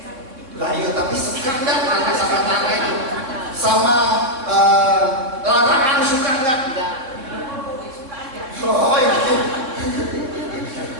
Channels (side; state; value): left; late; 3.7 ms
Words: Lah iya, tapi suka nggak tanah sama tanah itu? Sama larangan suka nggak? Oh itu.